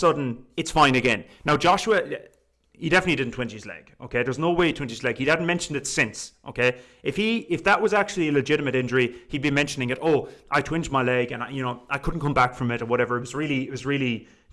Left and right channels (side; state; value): both; identical; correlation 1.00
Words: it's fine again. Now, Joshua, he definitely didn't twinge his leg, okay? There's no way he twinged his leg. He hadn't mentioned it since, okay? If that was actually a legitimate injury, he'd be mentioning it. I twinged my leg and I couldn't come back from it or whatever. It was really